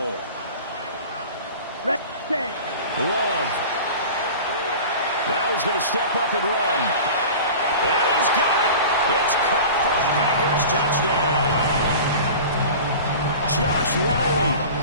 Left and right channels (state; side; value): inverted; both; correlation -0.37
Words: Set. Love. Now he's going to step up and run. And he's got it. It's caught for a Packers touchdown. Josh Riley,